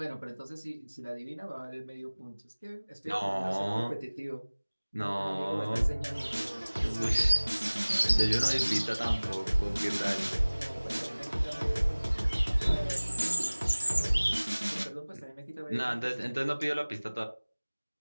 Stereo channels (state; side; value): inverted; both; correlation -1.00